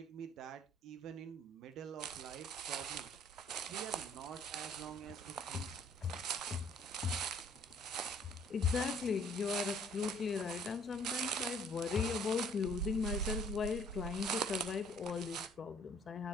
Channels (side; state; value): both; normal; correlation 0.59